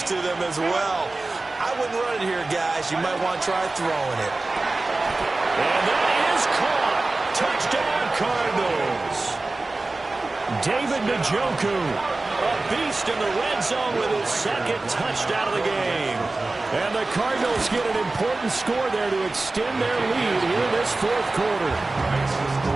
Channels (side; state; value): left; quieter; 3.2 dB